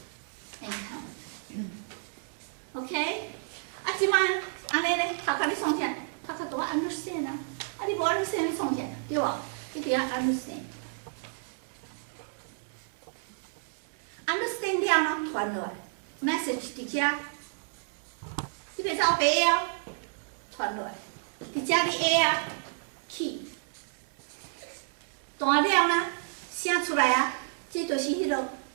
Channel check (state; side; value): silent; left; 57 dB below the other